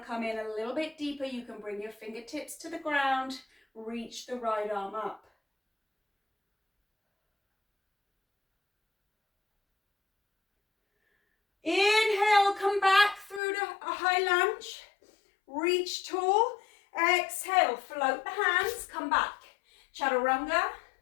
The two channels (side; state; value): right; drops out; at 13.4 s